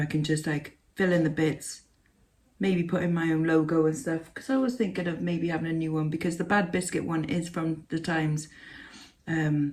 can just like fill in the bits, maybe put in my own logo and stuff, because I was thinking of maybe having a new one, because the Bad Biscuit one is from the times.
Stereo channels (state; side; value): identical; both; correlation 1.00